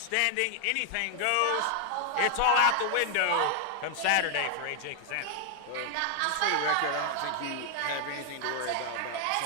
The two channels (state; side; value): different; both; correlation 0.00